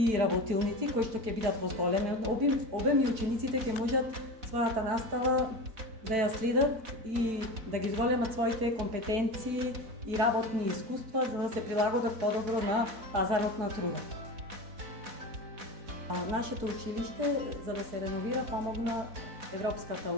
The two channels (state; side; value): late; left; 4.1 ms